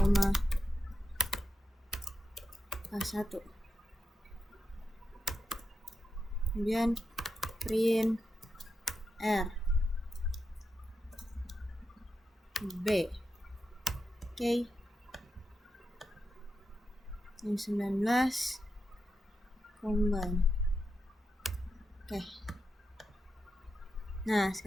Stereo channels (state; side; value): normal; both; correlation 0.87